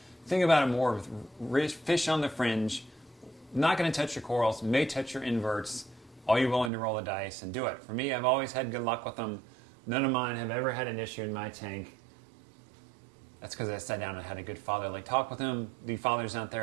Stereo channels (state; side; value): drops out; left; at 6.7 s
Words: think about it more with fish on the fringe. Not going to touch your corals, may touch your inverts. Are you willing to roll the dice and do it? For me, I've always had good luck with them. None of mine have ever had an issue in my tank. That's because I sat down and had a good fatherly talk with them. The fathers out